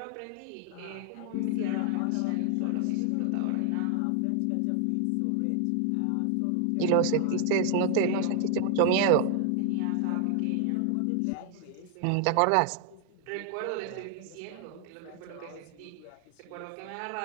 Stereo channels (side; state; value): both; different; correlation 0.00